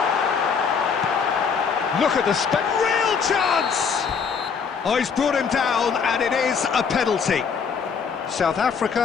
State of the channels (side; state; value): right; quieter; 6.1 dB